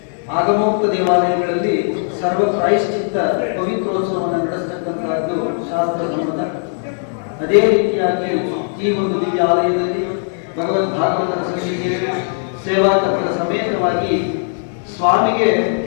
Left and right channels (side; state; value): right; silent; digital silence